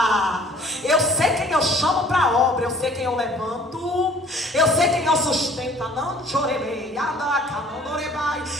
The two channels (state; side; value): normal; both; correlation 0.53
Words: Eu sei quem eu chamo para a obra. Eu sei quem eu levanto. Eu sei quem eu sustento. Não chorei.